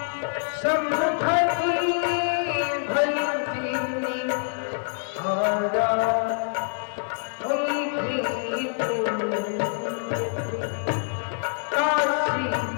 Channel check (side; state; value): right; silent; digital silence